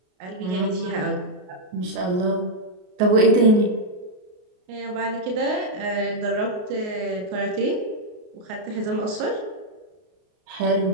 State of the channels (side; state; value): left; late; 33 ms